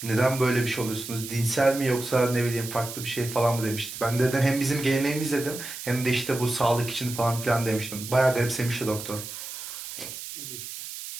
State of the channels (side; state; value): right; noise; hiss, 9 dB below the sound